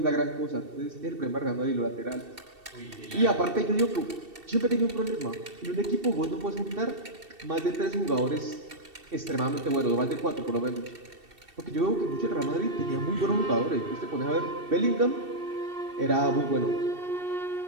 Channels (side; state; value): left; late; 2.7 ms